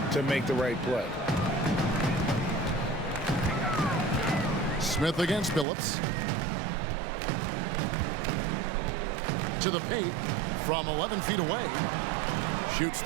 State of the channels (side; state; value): left; drops out; at 5.7 s